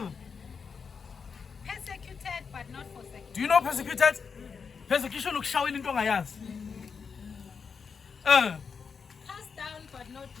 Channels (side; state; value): right; quieter; 5.8 dB